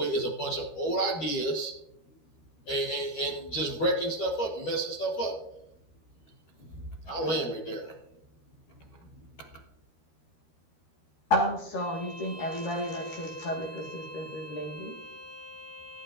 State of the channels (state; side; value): late; right; 13 ms